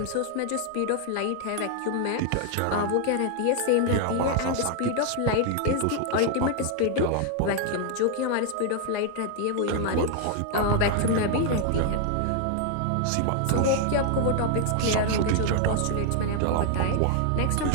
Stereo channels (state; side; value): different; both; correlation 0.00